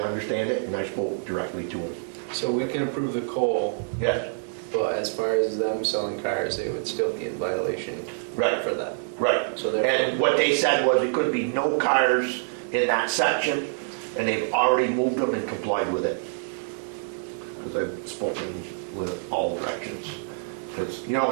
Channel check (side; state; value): left; silent; 61 dB below the other